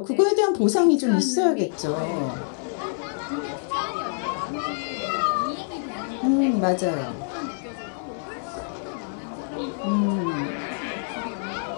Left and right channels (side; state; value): right; silent; digital silence